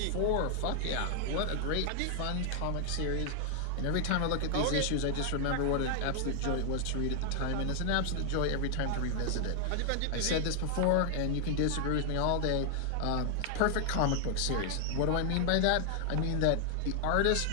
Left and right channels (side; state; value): both; different; correlation 0.00